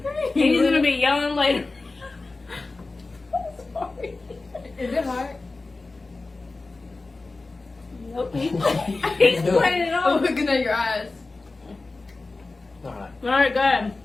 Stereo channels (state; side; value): quieter; right; 3.5 dB